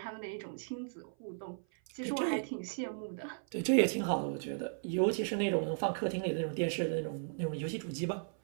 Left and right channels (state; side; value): silent; left; 54 dB below the other